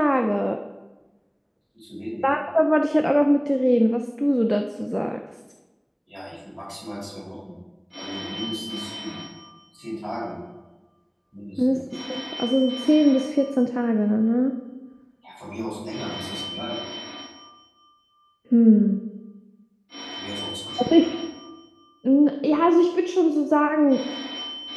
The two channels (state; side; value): identical; both; correlation 1.00